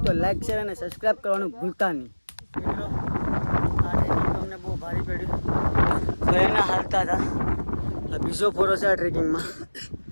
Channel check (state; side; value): inverted; both; correlation -1.00